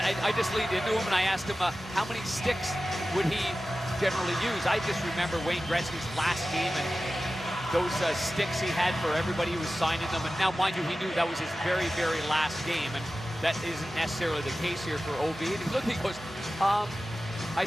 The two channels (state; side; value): normal; both; correlation 0.95